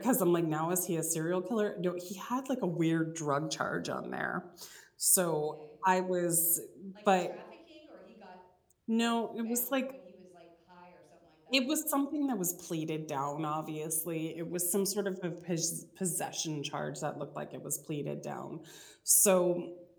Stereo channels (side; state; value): both; identical; correlation 1.00